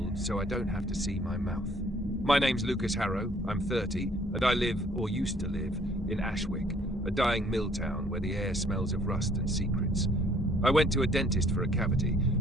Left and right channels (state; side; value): normal; both; correlation 0.60